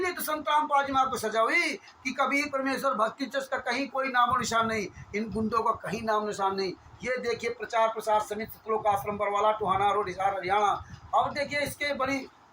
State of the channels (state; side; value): identical; both; correlation 1.00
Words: तो संत रामपाल जी महाराज को सजा हुई कि कभी परमेश्वर भक्ति ट्रस्ट का कहीं कोई नामो निशान नहीं, इन गुंडों का कहीं नाम निशान नहीं। ये देखिए, प्रचार प्रसार समिति, सतलोक आश्रम बरवाला, टोहाना रोड, हिसार, हरियाणा। अब देखिए, इसके बड़ी